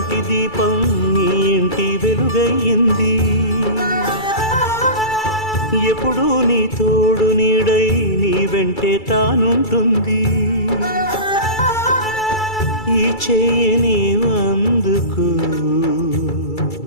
దీపం నీ ఇంటి వెలుగయ్యింది, ఎప్పుడూ నీ తోడు నీడై నీ వెంటే తానుంటుంది. ఈ చెయ్యి నీవందుకు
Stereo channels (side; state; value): right; late; 2.3 ms